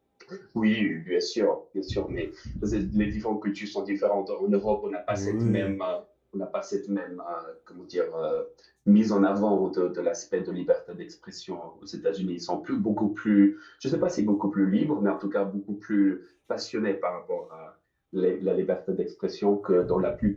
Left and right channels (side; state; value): both; identical; correlation 1.00